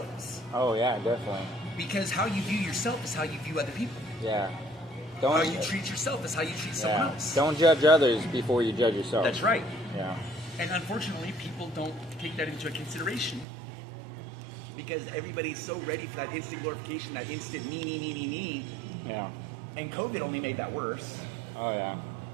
Oh yeah, definitely. Because how you view yourself is how you view other people. Yeah. How you treat yourself is how you treat someone else. Don't judge others before you judge yourself. That's right. Yeah. And unfortunately, people don't take that into consideration because everybody's so ready for that instant glorification, that instant me. Yeah. And COVID only made that worse. Oh yeah.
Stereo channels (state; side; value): drops out; left; at 13.5 s